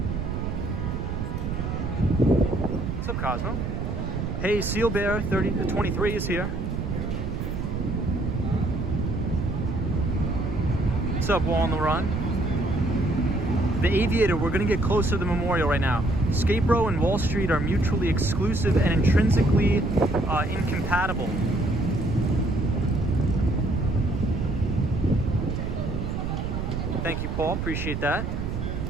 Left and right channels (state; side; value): noise; right; rumble, 3 dB below the sound